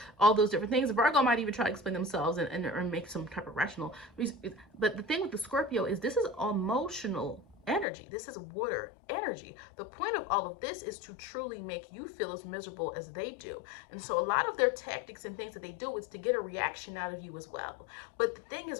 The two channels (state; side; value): drops out; right; at 7.9 s